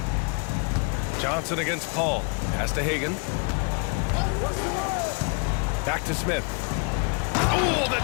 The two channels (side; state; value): right; quieter; 34.8 dB